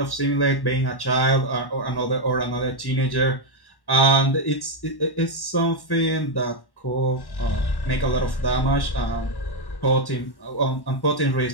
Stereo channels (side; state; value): right; late; 1.1 ms